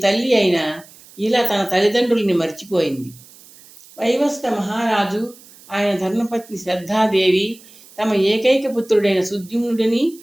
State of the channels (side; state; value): right; noise; hiss, 23 dB below the sound